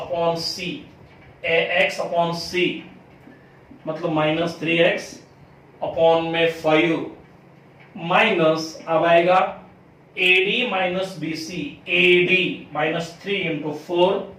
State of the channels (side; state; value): both; identical; correlation 1.00